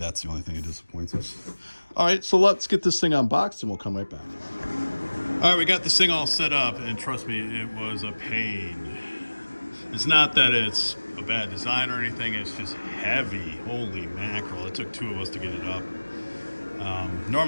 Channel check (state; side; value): inverted; both; correlation -1.00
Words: the only thing that disappoints us. All right, so let's get this thing unboxed and we'll come right back. All right, we got this thing all set up, and trust me, it was a pain. It's not that it's a bad design or anything. It's just heavy. Holy mackerel. It took two of us to get it up.